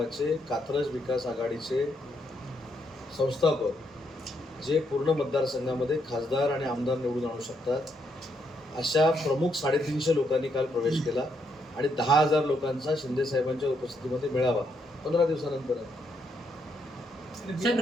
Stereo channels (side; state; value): both; normal; correlation 0.76